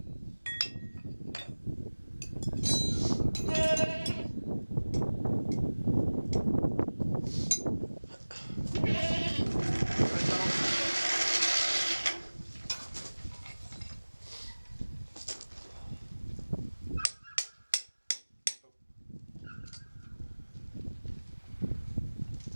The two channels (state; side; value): inverted; both; correlation -1.00